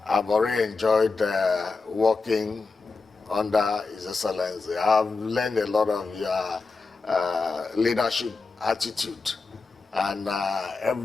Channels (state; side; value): quieter; right; 4.1 dB